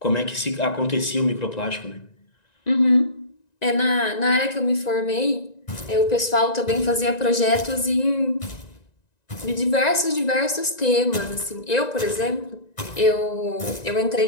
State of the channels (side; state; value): right; late; 1.9 ms